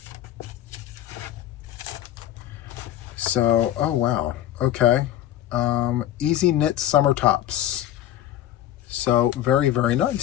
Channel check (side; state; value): right; quieter; 12.5 dB